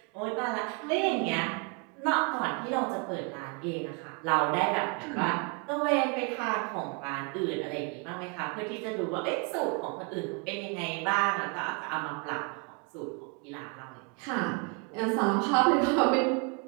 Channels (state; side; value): quieter; left; 33.3 dB